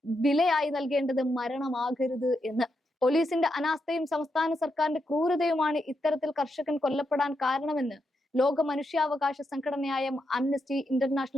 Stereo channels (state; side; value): normal; both; correlation 0.83